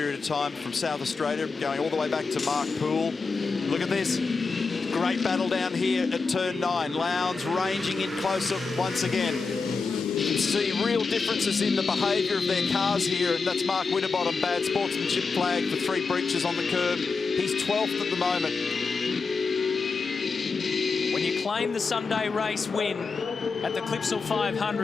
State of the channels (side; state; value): right; quieter; 4.5 dB